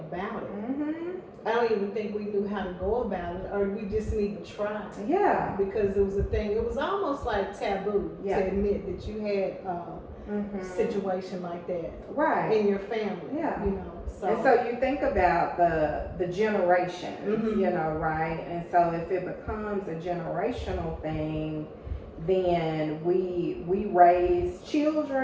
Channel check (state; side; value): identical; both; correlation 1.00